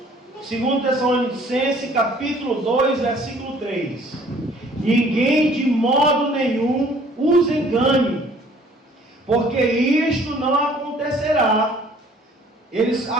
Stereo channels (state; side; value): normal; both; correlation 0.56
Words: 2 Tessalonicenses, capítulo 2, versículo 3: ninguém de modo nenhum os engane, porque isto não acontecerá. Eles